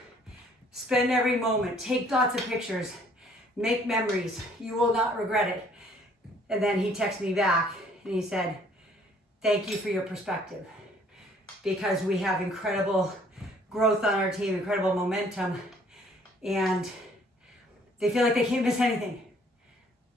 spend every moment, take lots of pictures, make memories. You will not regret it. And then he texted me back and he said, thank you for your perspective, because we have incredible growth on our team, incredible momentum, and they feel like they can't miss anything.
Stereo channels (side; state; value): both; normal; correlation 0.60